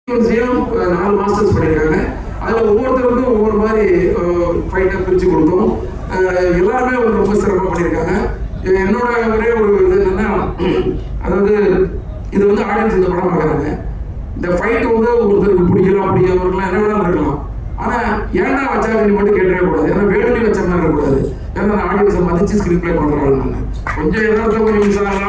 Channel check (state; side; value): identical; both; correlation 1.00